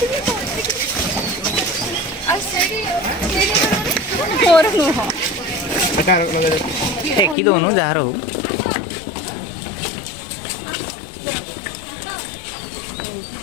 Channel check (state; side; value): drops out; right; at 7.4 s